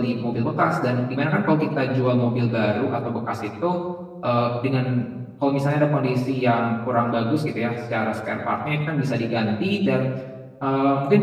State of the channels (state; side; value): identical; both; correlation 1.00